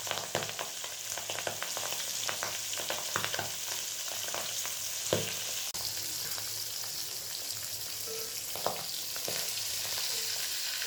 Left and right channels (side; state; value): both; identical; correlation 1.00